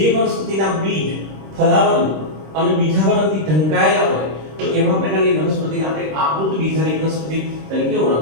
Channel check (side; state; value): left; late; 26 ms